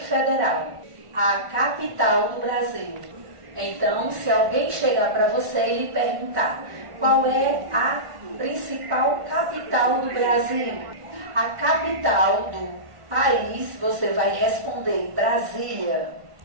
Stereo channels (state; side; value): late; left; 1.5 ms